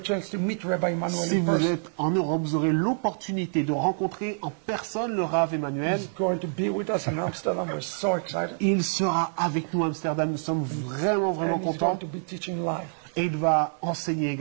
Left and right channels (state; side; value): silent; left; digital silence